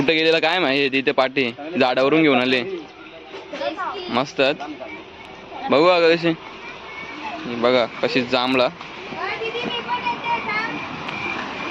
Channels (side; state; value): both; identical; correlation 1.00